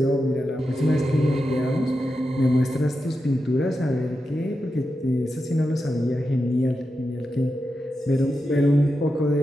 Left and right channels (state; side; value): normal; both; correlation 0.89